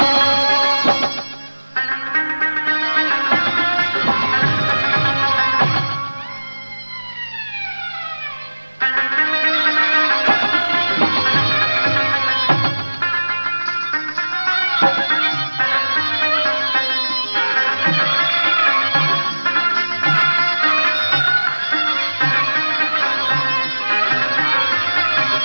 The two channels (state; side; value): inverted; both; correlation -1.00